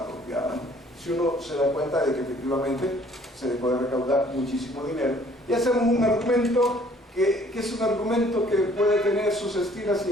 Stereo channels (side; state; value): both; normal; correlation 0.58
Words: Si uno se da cuenta de que efectivamente se puede recaudar muchísimo dinero, y hacemos un argumento que es un argumento que puede tener sus estilas